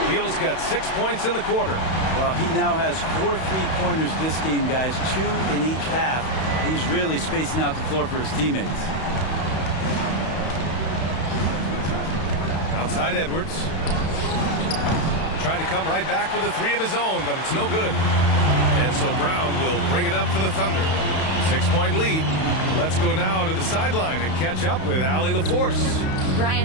Beal's got 6 points in the quarter. Well, he now has 4 3-pointers this game, guys. 2 in each half. He's really spacing out the floor for his teammates. Outside Edwards. Tried to come right back with a 3 of his own, but it's no good. And so Brown will bring it up for the Thunder. 6-point lead. Let's go now to the sideline and catch up with Allie LaForce.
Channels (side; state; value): right; late; 31 ms